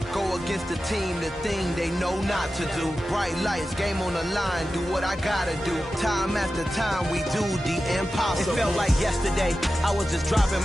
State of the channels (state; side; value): normal; both; correlation 0.93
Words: Go against the team, the thing they know not to do. Bright lights, game on the line, do what I gotta do. Time after time, we do the impossible. It felt like yesterday, I was just driving